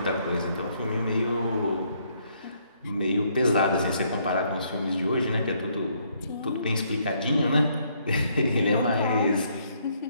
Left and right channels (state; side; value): inverted; both; correlation -0.70